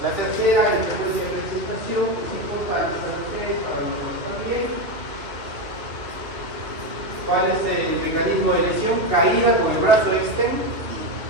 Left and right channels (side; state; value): left; late; 2.8 ms